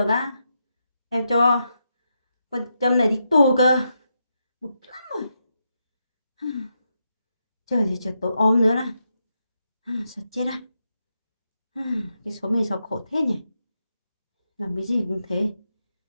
á, em cho con châm này đi tù cơ. Bực lắm rồi. Trời thì trời tối om nữa là sợ chết à. Cái số mình sao khổ thế nhỉ, làm cái gì cũng thế,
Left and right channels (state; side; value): inverted; both; correlation -0.84